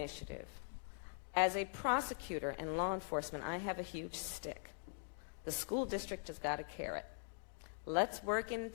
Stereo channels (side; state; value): right; silent; digital silence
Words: as a prosecutor and law enforcement, I have a huge stick. The school district has got a carrot. Let's work in